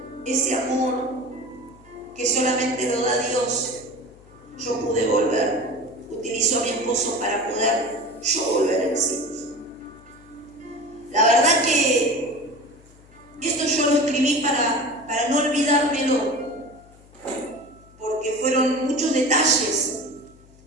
ese amor que solamente lo da Dios, yo pude volver. Utilizó a mi esposo para poder yo volver en sí. La verdad que esto yo lo escribí para no olvidármelo, porque fueron muchos detalles,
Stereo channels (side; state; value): left; noise; hum, 25 dB below the sound